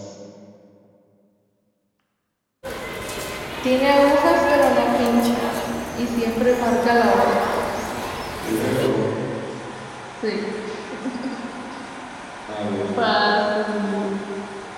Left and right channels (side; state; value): both; identical; correlation 1.00